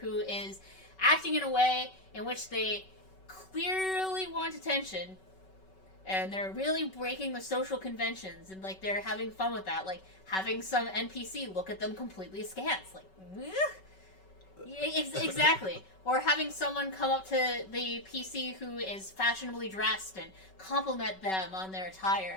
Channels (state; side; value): late; right; 5.3 ms